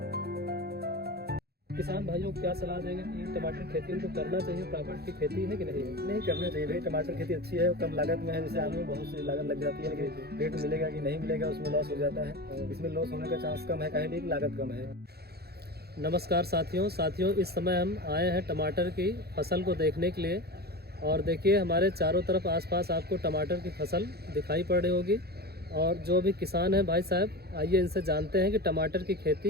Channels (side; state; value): left; late; 0.46 ms